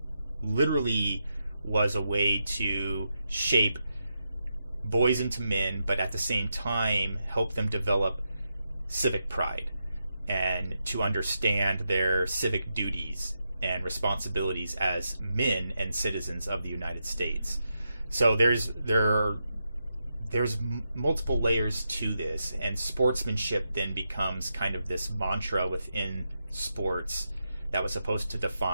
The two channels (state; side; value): inverted; both; correlation -0.85